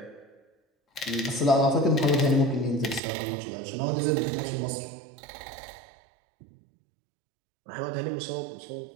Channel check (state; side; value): drops out; left; at 3.0 s